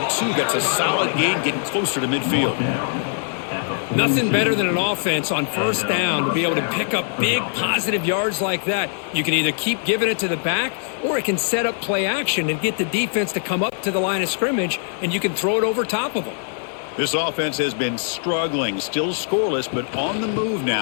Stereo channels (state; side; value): silent; right; digital silence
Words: That's a solid gain, getting closer to midfield. Nothing better than an offense on first down to be able to pick up big positive yards like that. You can either keep giving it to the back, or it can set up play action and get the defense to come up to the line of scrimmage, and you can throw it over top of them. This offense has been struggling, still scoreless, but on the move